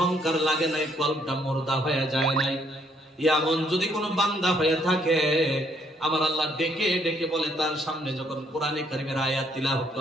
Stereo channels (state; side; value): normal; both; correlation 0.68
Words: লাগে নাই, কলবটা মুর্দা হয়ে যায় নাই, এমন যদি কোনো বান্দা হয়ে থাকে, আমার আল্লাহ ডেকে ডেকে বলে, তার সামনে যখন কোরআনে কারীমের আয়াত তিলাওয়াত